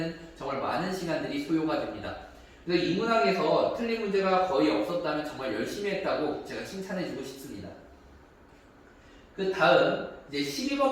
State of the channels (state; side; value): identical; both; correlation 1.00